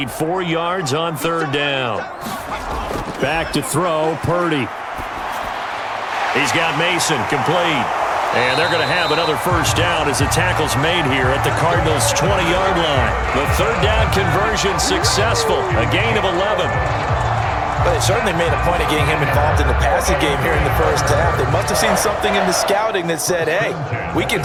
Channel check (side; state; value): both; identical; correlation 1.00